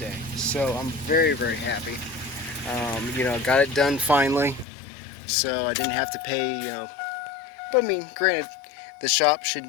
So I'm very happy. Got it done finally. So I didn't have to pay, but I mean, granted, the shop should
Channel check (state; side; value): drops out; right; at 4.7 s